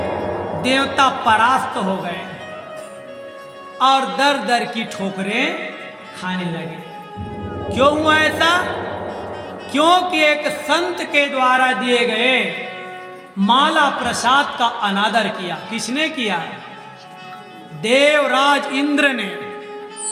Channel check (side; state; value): both; identical; correlation 1.00